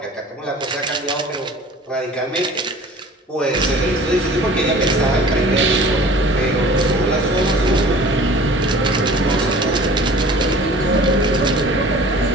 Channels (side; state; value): both; normal; correlation 0.45